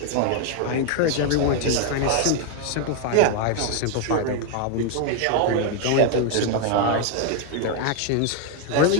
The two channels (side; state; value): both; different; correlation 0.01